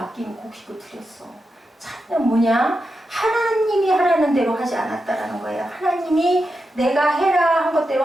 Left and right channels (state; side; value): normal; both; correlation 0.88